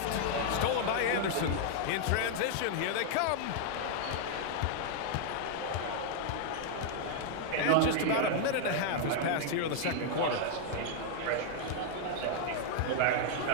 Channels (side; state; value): both; different; correlation 0.00